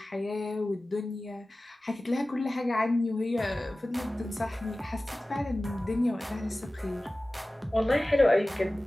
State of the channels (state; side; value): normal; both; correlation 0.97